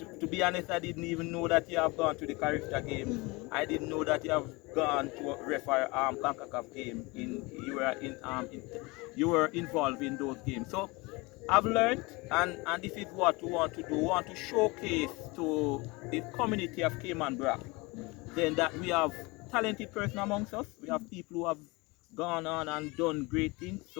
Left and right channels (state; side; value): quieter; right; 25.0 dB